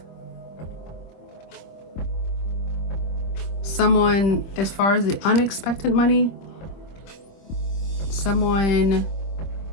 Someone, as far as the unexpected money, someone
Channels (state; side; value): late; right; 25 ms